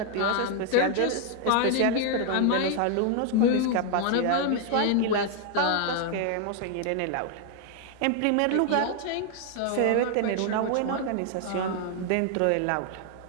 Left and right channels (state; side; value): different; both; correlation 0.00